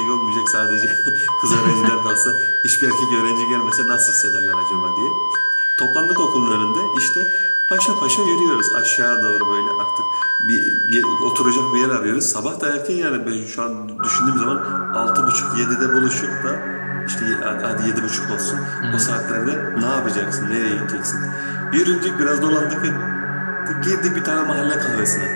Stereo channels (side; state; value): both; inverted; correlation -1.00